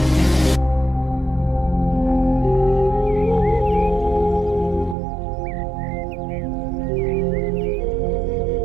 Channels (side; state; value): left; drops out; at 5.0 s